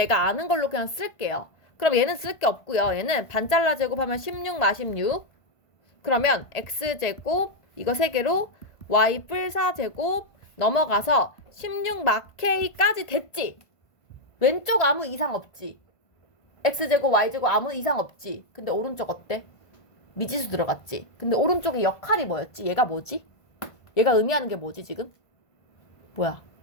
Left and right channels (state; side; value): late; right; 1.5 ms